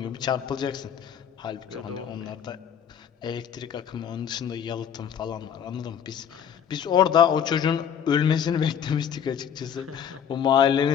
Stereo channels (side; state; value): right; quieter; 8.4 dB